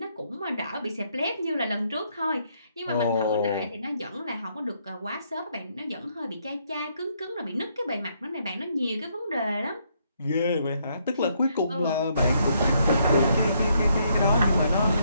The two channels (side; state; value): both; inverted; correlation -0.73